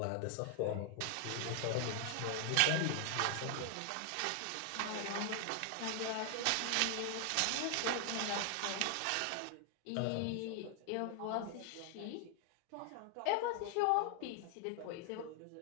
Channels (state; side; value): different; both; correlation 0.00